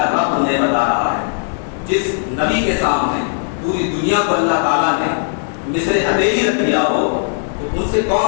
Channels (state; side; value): silent; right; 68 dB below the other